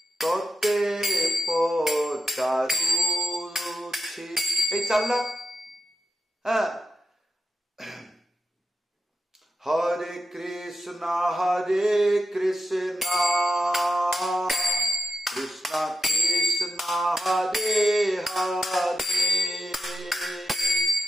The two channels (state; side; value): normal; both; correlation 0.88